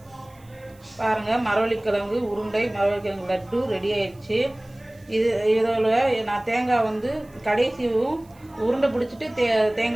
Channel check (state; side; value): noise; right; hiss, 30 dB below the sound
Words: பாருங்கள், மரவள்ளிக்கிழங்கு உருண்டை மரவள்ளிக்கிழங்கு லட்டு ரெடி ஆயிடுச்சு. இதில் நான் தேங்காய் வந்து கடைசியும் உருண்டை பிடிச்சிட்டு